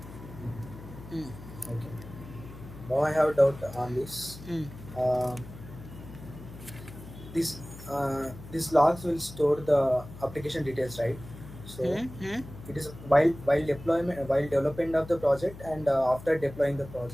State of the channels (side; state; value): left; noise; hum, 15 dB below the sound